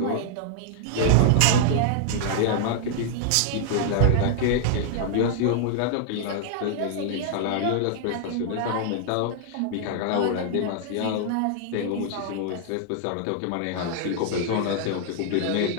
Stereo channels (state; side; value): different; both; correlation -0.01